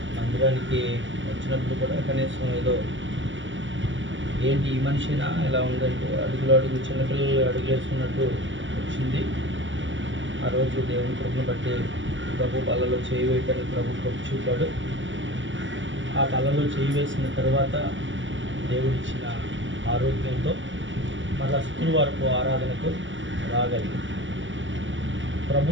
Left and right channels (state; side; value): late; left; 0.55 ms